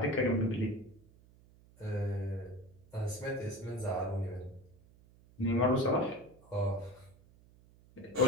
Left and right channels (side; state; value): right; noise; hum, 26 dB below the sound